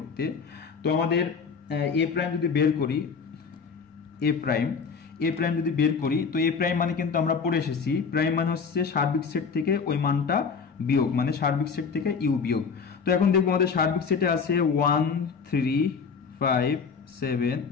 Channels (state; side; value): quieter; right; 5.7 dB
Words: তো আমাদের এ প্রাইম যদি বের করি, এ প্রাইম যদি বের করি, তো এ প্রাইম মানে কিন্তু আমরা পড়ে এসেছি, প্রাইম মানে হচ্ছে সার্বিক সেট থেকে ওই মানটা বিয়োগ, মানে সার্বিক সেট থেকে ইউ বিয়োগ। তো এখন দেখবো আমাদের সার্বিক সেটে আছে 1, 3, 5, 7,